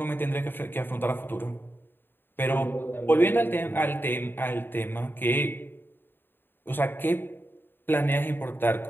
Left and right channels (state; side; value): late; right; 0.097 ms